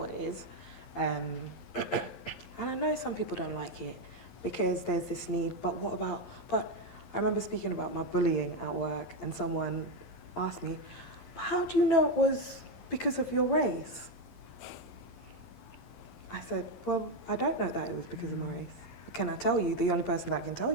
it is. And I know some people don't like it because there's this need, but I remember speaking about my bullying at work and someone asked me, how do you know it was because of your race? I said, well, I don't know that it was because of my race. Can I tell you? The only person that can tell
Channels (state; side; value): late; right; 11 ms